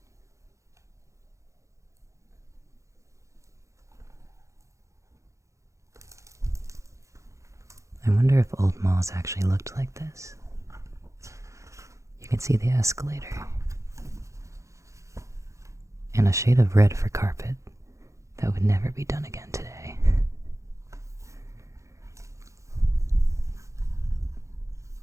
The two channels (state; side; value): late; left; 0.15 ms